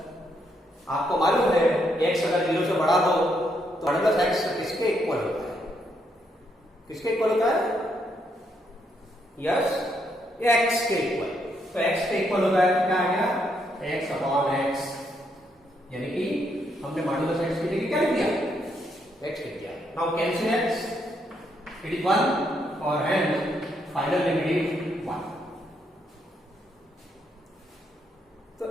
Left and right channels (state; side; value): normal; both; correlation 0.76